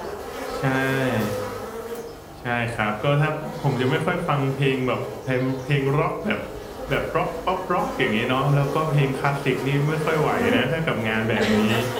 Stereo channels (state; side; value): identical; both; correlation 1.00